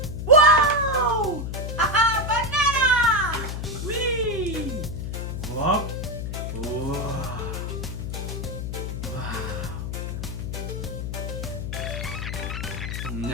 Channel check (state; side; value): noise; left; hum, 4 dB below the sound